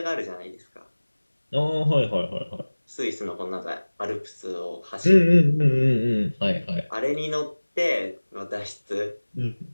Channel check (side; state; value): both; inverted; correlation -1.00